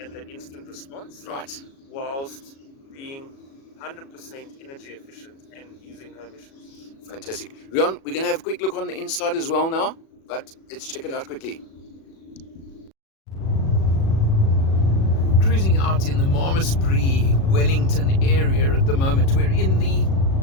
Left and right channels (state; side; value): late; right; 37 ms